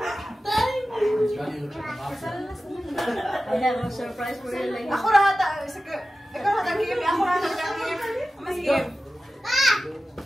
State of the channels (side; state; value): both; normal; correlation 0.94